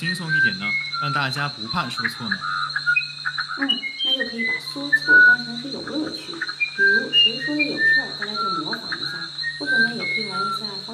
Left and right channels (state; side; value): identical; both; correlation 1.00